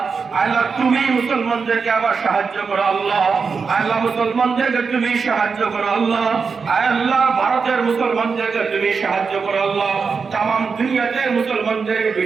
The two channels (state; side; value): quieter; left; 5.3 dB